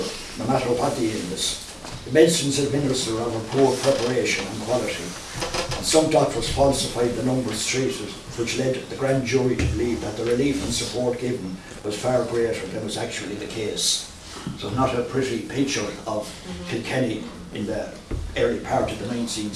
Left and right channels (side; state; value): both; identical; correlation 1.00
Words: no matter what the illness. The medicines administered are of poor preparation and quality, and some doctors falsified the numbers treated, which led the grand jury to believe that the relief and support given was far greater than was actually the case. So not a pretty picture of Kilkenny in the early part of the 19th